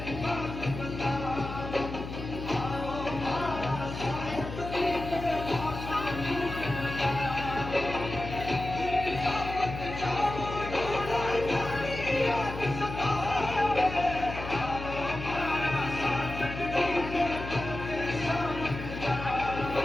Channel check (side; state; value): left; noise; hum, 8 dB below the sound